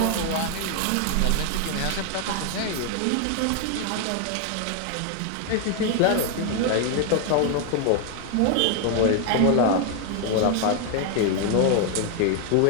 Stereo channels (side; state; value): both; different; correlation 0.00